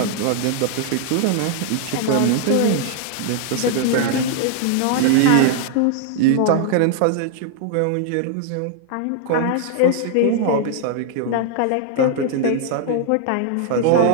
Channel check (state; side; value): different; both; correlation 0.00